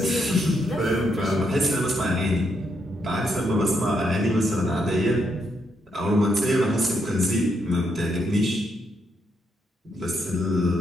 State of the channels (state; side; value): normal; both; correlation 0.78